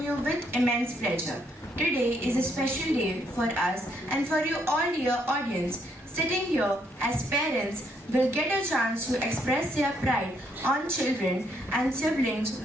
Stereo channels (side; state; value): both; normal; correlation 0.72